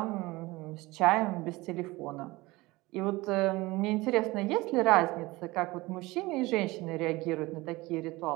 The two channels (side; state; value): left; quieter; 21.2 dB